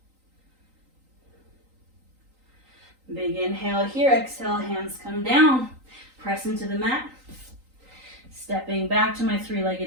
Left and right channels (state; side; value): late; left; 3.9 ms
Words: Big inhale here. Exhale, hands come down. Press into the mat. Stepping back to my